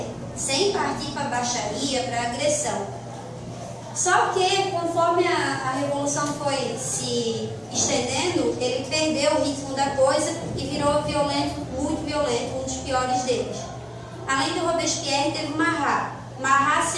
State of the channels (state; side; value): identical; both; correlation 1.00